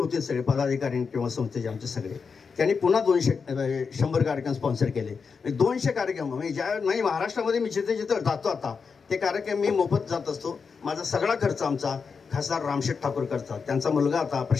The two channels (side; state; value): right; quieter; 5.5 dB